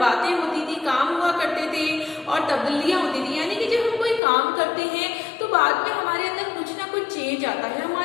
होती थी, काम हुआ करते थे और तब्दीलियां होती थी। यानी कि जब हम कोई काम करते हैं तो बाद में हमारे अंदर कुछ ना कुछ चेंज आता है,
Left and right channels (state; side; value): drops out; right; at 4.2 s